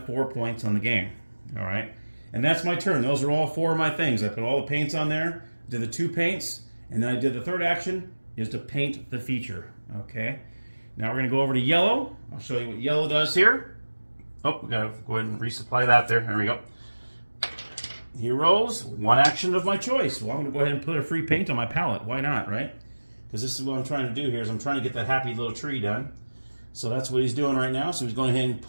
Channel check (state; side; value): inverted; both; correlation -1.00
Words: 4 points on the game. All right. And that's my turn. Those are all 4 of my things. I put all the paints on there, did the 2 paints, and then I did the third action is to paint the feature. Okay. Now we're going to go over to yellow. I'll show you what yellow does here. Oh, we got to go ahead and resupply that there. There we go. Heroes, 1 action of my choice. Well, I'm going to go ahead and put a free paint on my palette. Why not, right? Because this is what I'm trying to do here is I'm trying to get that happy little tree done. So that's what he's doing right now. So he's going ahead and